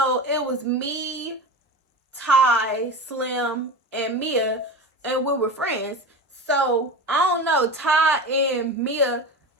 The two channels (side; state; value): both; normal; correlation 0.28